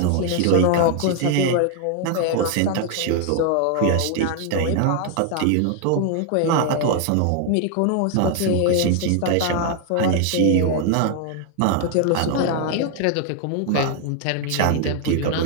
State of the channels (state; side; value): different; both; correlation 0.00